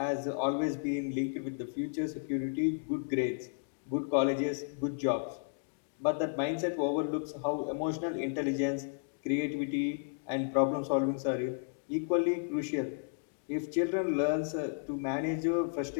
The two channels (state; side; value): silent; right; digital silence